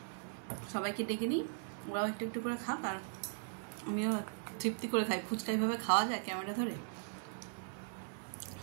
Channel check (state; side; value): silent; left; 52 dB below the other